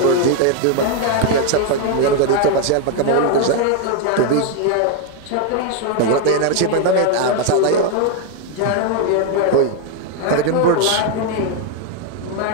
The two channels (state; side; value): different; both; correlation 0.01